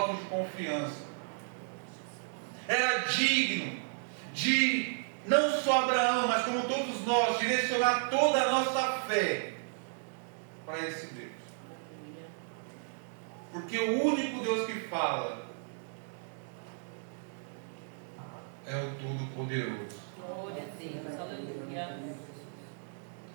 de confiança. Era digno de, não só Abraão, mas como todos nós, direcionar toda a nossa fé para esse Deus. Porque o único Deus que fala é o Todo-Poderoso. Glória a Deus, aleluia.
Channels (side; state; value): left; silent; digital silence